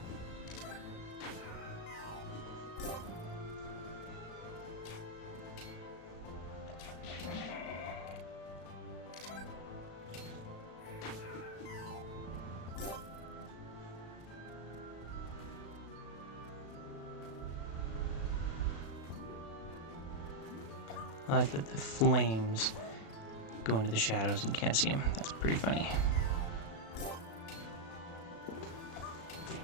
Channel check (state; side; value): late; right; 36 ms